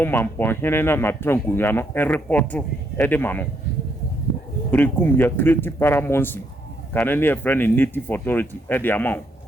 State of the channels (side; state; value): both; normal; correlation 0.74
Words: Mampon hene na trankunya no report e de ma no brekum ya create paramount kanene a friend in native authority e de amount